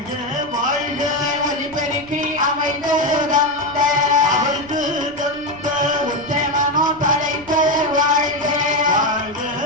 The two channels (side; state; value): left; noise; rumble, 23 dB below the sound